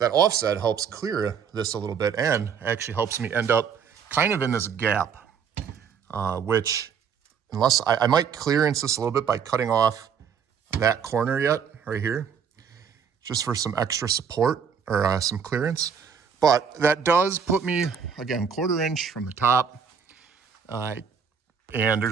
offset helps clear this a little bit and actually helps me end up kind of in this gap, which, unless I might clearance this a little bit by cutting off that corner yet, right here, just for some extra support or some clearance. But that does put me, again, ¼ inch from the top. And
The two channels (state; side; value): quieter; left; 6.9 dB